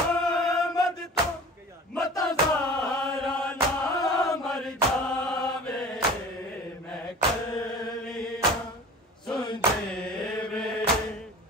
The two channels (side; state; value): both; normal; correlation 0.41